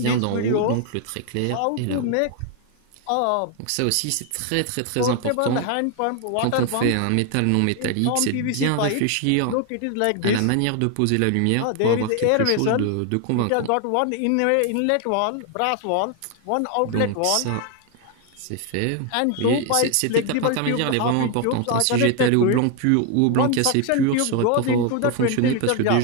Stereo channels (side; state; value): both; different; correlation 0.01